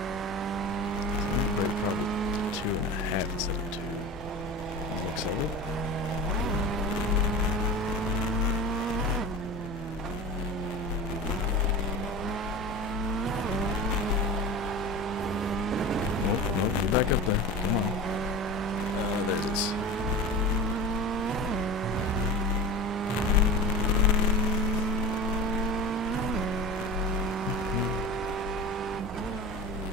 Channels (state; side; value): normal; both; correlation 0.32